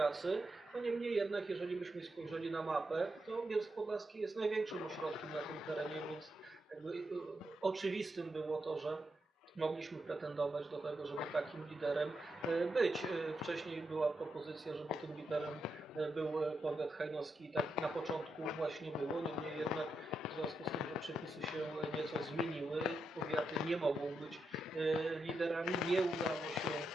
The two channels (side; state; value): both; normal; correlation 0.84